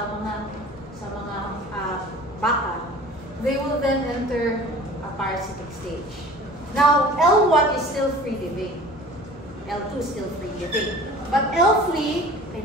baka. They will then enter a parasitic stage. Now, L1 is still free living. L2 is still free living. But L3, ay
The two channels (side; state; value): both; normal; correlation 0.44